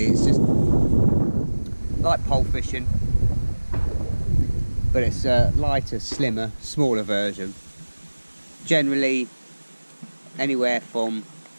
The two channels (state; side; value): inverted; both; correlation -1.00